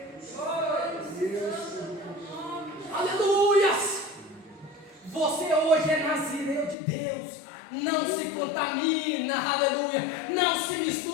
Aleluias! Você hoje é nazireu de Deus. Não se contamina, aleluia. Não se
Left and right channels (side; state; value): right; drops out; at 6.8 s